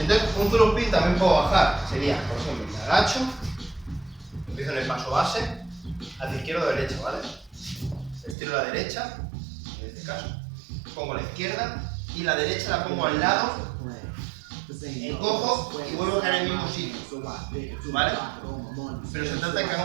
un through spin también puedo bajar. Sería, por ejemplo, me agacho, empiezo en el paso base, hacia izquierda o derecha, ¿vale? Estiro la derecha, en este caso, pongo la izquierda y la derecha la pongo al lado, encojo y vuelvo a caer en el mismo sitio, ¿vale? Pero se trata de que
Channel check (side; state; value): left; drops out; at 8.3 s